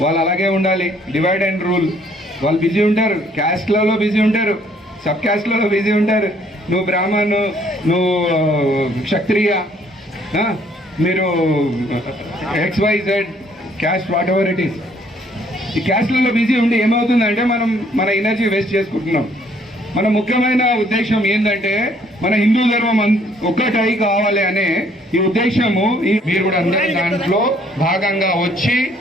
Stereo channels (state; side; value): normal; both; correlation 0.63